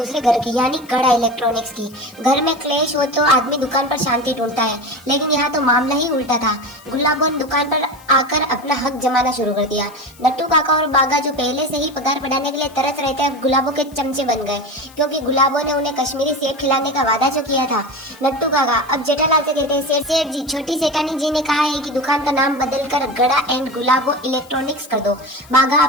घर की, यानी गड़ा इलेक्ट्रॉनिक्स की। घर में क्लेश हो तो आदमी दुकान पर शांति ढूंढता है, लेकिन यहाँ तो मामला ही उल्टा था। गुलाबो ने दुकान पर आकर अपना हक जमाना शुरू कर दिया। नट्टू काका और बागा जो पहले से ही पगार बढ़ाने के लिए तरस रहते हैं, गुलाबो के चमचे बन गए, क्योंकि गुलाबो ने उन्हें कश्मीरी सेब खिलाने का वादा जो किया था। नट्टू काका अब जेठालाल से कहते हैं सेठ जी, छोटी सेठानी जी ने कहा है कि दुकान का नाम बदलकर गड़ा एंड गुलाबो इलेक्ट्रॉनिक्स कर दो। बागा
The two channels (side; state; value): left; noise; hiss, 25 dB below the sound